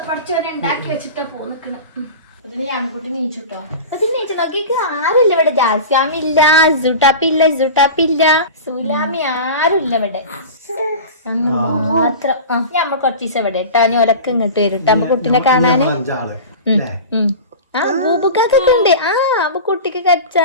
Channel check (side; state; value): both; inverted; correlation -0.32